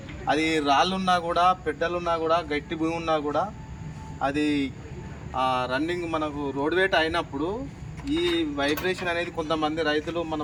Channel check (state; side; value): identical; both; correlation 1.00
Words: అది రాళ్ళున్నా కూడా పెద్దలున్నా కూడా గట్టి భూమి ఉన్నా కూడా అది రన్నింగ్ మనకు రోడ్ వేట్ అయినప్పుడు ఈ వైబ్రేషన్ అనేది కొంతమంది రైతులు మన